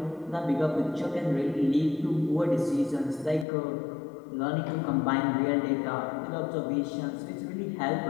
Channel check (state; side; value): drops out; right; at 3.5 s